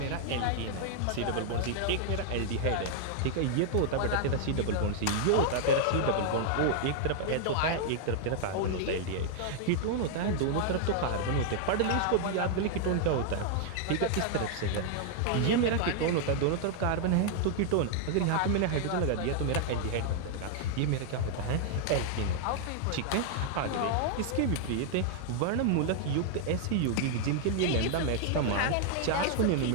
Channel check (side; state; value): both; different; correlation -0.01